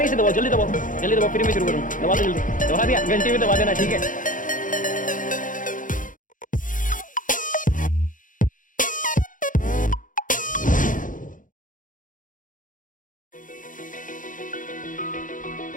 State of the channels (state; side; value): late; right; 0.38 ms